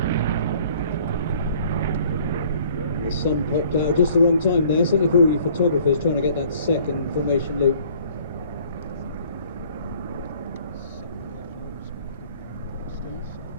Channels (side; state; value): both; inverted; correlation -0.56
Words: The sun popped out just the wrong time there, certainly for all you photographers trying to get that second formation loop.